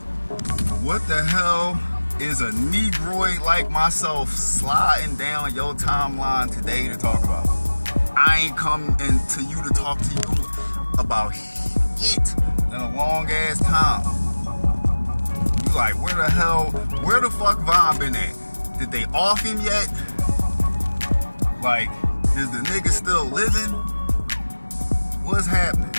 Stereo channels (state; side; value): inverted; both; correlation -1.00